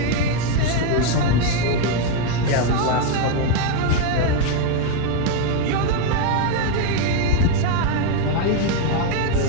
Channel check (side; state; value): both; different; correlation 0.01